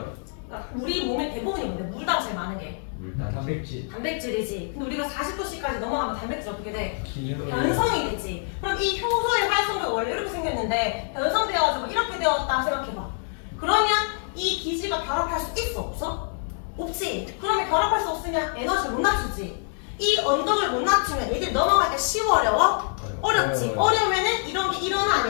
돼. 그러니까 우리 몸의 대부분이 뭔데? 물다가 제일 많은 게 물단. 단백질. 단백질이지. 근데 우리가 40도씨까지 넘어가면 단백질 어떻게 돼? 기능. 변성이 되지. 그럼 이 효소의 활성도가 원래 이렇게 생겼는데 변성되어가지고 이렇게 되었다 생각해봐. 그러면 이 기질과 결합할 수 있어? 없어? 없지. 그러면 결합할 수 없으면 에너지를 못 낮추지. 이 언덕을 못 낮추면 얘들 넘어가기가 쉬워 어려워? 어렵지. 어려우면은 이런 게 일어나 안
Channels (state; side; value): silent; right; 61 dB below the other